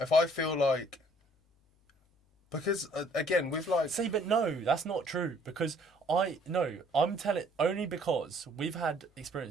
I feel like, because again with like, see, but no, that's not true, because I'm telling only because we've had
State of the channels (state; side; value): normal; both; correlation 0.60